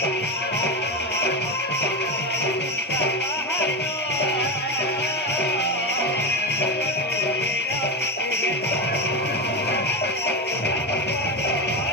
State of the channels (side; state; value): both; normal; correlation 0.17